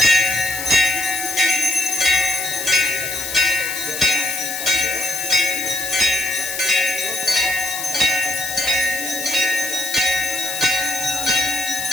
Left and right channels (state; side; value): noise; left; hiss, 6 dB below the sound